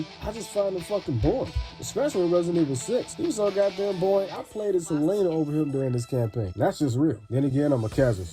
I just find him fucking boring. Especially in Resident Evil 6. He was so goddamn boring, I played as Selena over him during this campaign. That's just real. Then again, I'm a casual,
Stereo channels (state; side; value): identical; both; correlation 1.00